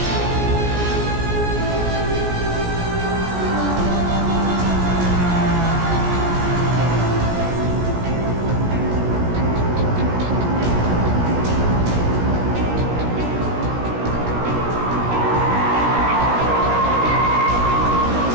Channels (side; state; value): left; late; 17 ms